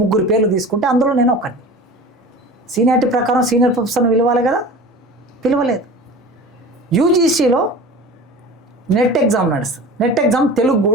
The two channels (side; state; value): both; normal; correlation 0.37